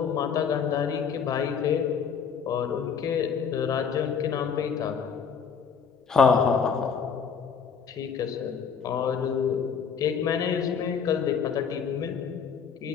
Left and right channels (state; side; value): quieter; right; 6.6 dB